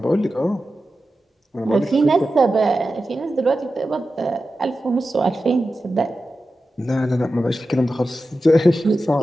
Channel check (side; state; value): both; normal; correlation 0.92